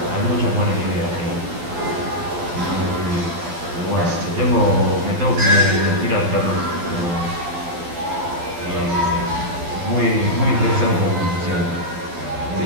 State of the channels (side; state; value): left; late; 12 ms